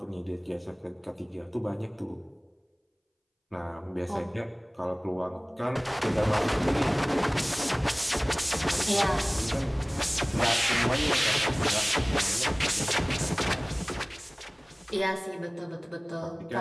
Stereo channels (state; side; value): identical; both; correlation 1.00